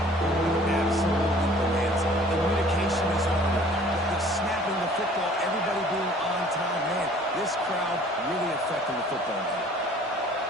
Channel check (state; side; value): normal; both; correlation 0.53